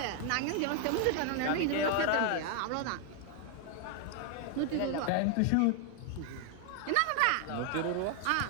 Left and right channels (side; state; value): both; different; correlation 0.01